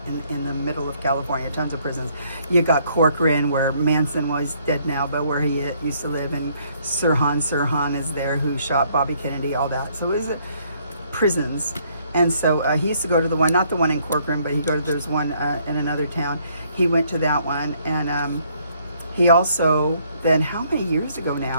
in the middle of California, tons of prisons. You got Corcoran, where Manson was dead now, but where he used to live, and Sirhan is there, who shot Bobby Kennedy, all that. So it was prisons. And so he used to go to the one, not the one in Corcoran, but there's one in another town. He went to that one, and he also, then how many years ago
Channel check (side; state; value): both; inverted; correlation -0.67